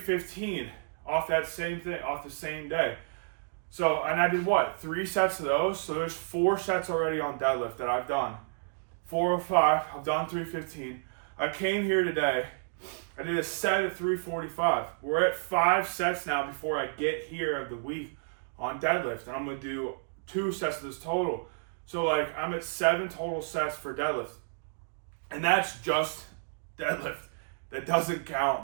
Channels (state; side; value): silent; left; digital silence